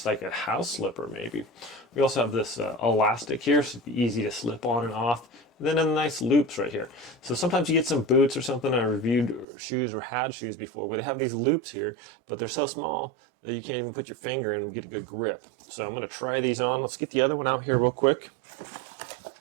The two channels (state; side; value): drops out; left; at 9.5 s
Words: like a house slipper maybe. We also have this elastic here, so it'd be easy to slip on and off. And then a nice loops right here. So sometimes you get some boots or something. I reviewed shoes or had shoes before where they have these loops here, but they're so small that you can't even put your finger in and get a good grip. So I'm going to try these on. Let's get the other one out here real quick.